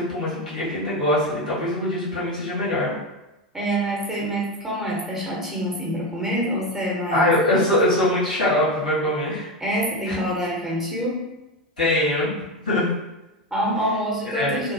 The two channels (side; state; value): both; normal; correlation 0.16